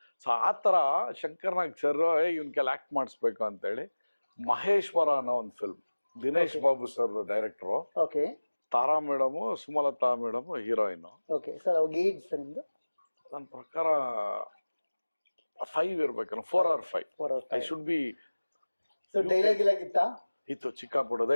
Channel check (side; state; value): both; inverted; correlation -1.00